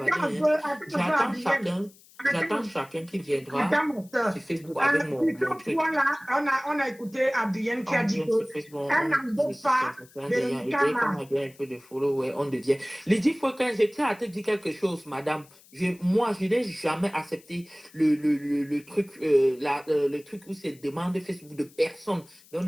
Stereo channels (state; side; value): noise; left; hiss, 26 dB below the sound